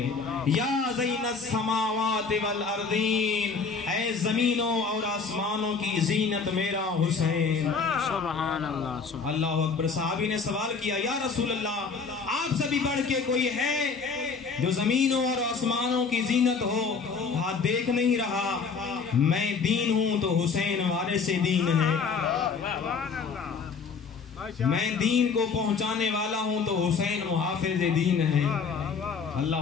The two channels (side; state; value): right; quieter; 5.2 dB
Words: یا زین السماوات والارضین، اے زمینوں اور آسمانوں کی زینت میرا حسین. سبحان اللہ. اللہ اکبر. صحابی نے سوال کیا یا رسول اللہ آپ سے بھی بڑھ کے کوئی ہے جو زمینوں اور آسمانوں کی زینت ہو؟ ہاتھ دیکھ نہیں رہا. میں دین ہوں تو حسین وارث دین ہے. میں دین کو پہنچانے والا ہوں تو حسین محافظ دین ہے.